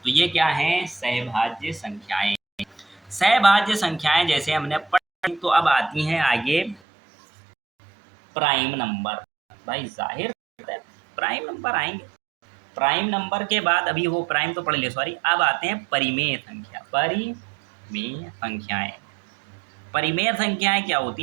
तो ये क्या है? सहभाज्य संख्याएं। सहभाज्य संख्याएं जैसे हमने पढ़ी, तो अब आती हैं आगे प्राइम नंबर। भाई जाहिर है प्राइम नंबर आएंगे। प्राइम नंबर के बाद, अभी वो प्राइम तो पढ़ लिया, सॉरी, अब आते हैं परिमेय संख्या। परिमेय संख्याएं, परिमेय संख्याएं क्या होती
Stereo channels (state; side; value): drops out; left; at 6.8 s